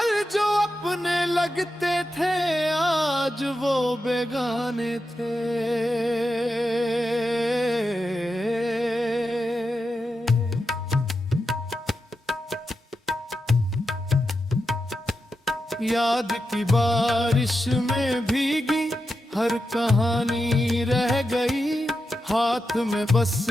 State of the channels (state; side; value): normal; both; correlation 0.89